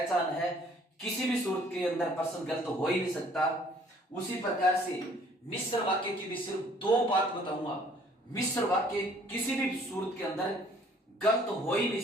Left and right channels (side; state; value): both; normal; correlation 0.58